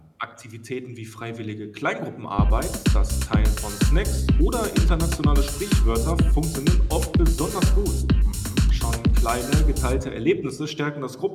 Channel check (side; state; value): both; identical; correlation 1.00